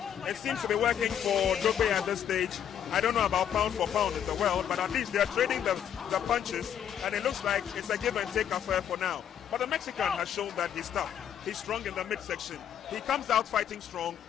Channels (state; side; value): quieter; right; 9.3 dB